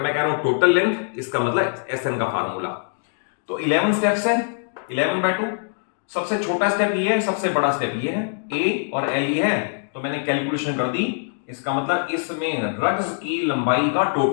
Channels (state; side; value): silent; right; digital silence